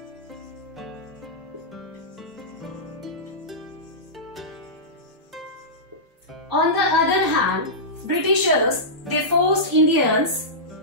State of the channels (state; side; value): normal; both; correlation -0.15